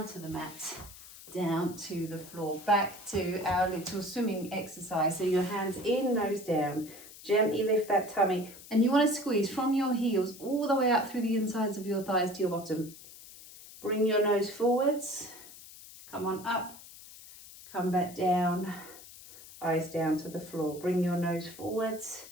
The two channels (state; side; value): noise; left; hiss, 18 dB below the sound